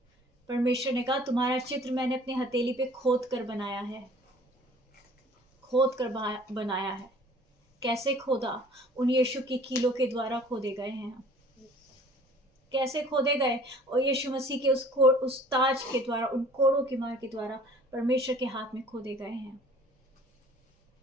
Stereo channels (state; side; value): normal; both; correlation 0.51